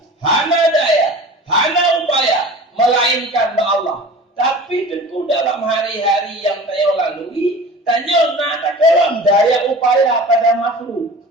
Hana daya, hana upaya melainkan Allah. Tapi tentu dalam hari-hari yang saya lalui, tanya nak tak kalam daya upaya pada makhluk.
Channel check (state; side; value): normal; both; correlation 0.39